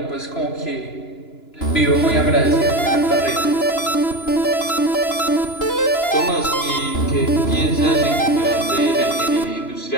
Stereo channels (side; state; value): right; late; 2.9 ms